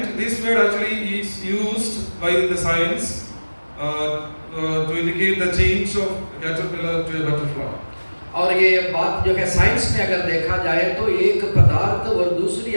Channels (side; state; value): both; inverted; correlation -1.00